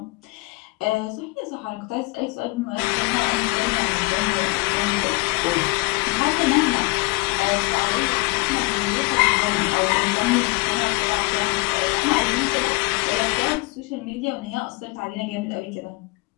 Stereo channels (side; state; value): right; quieter; 25.9 dB